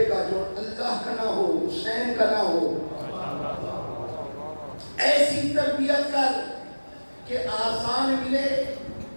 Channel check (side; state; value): both; inverted; correlation -1.00